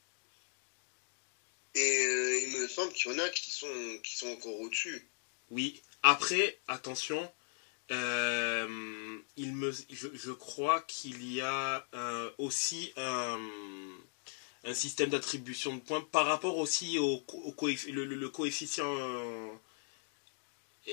Et il me semble qu'il y en a qui sont encore au-dessus. Oui. Après, attention, je crois qu'il y a aussi un système d'attribution de points par rapport aussi le coefficient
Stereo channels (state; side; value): silent; right; 53 dB below the other